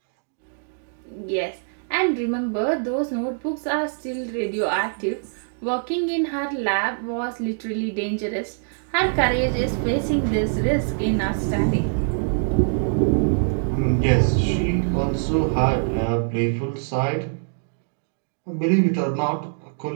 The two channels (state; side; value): silent; left; digital silence